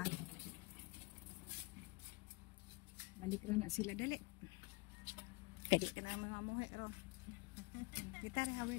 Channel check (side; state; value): right; quieter; 25.7 dB